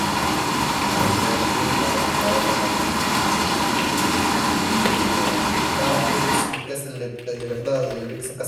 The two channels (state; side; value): identical; both; correlation 1.00